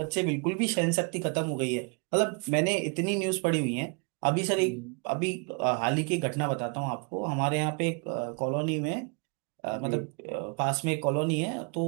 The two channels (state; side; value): quieter; left; 34.4 dB